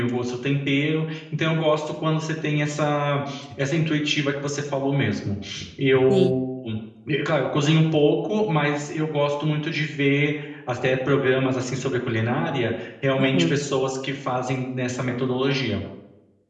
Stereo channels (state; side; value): identical; both; correlation 1.00